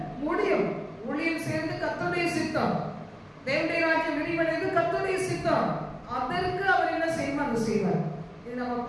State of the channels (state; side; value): identical; both; correlation 1.00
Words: முடியும். ஊழியம் சேர்ந்து கர்த்தருடைய சித்தம், தேவனுடைய ராஜ்யம் விரிவடைந்து கர்த்தருடைய சித்தம், அதற்கு அவர் என்ன செய்யணும் அதை செய்வார். இது நம்ம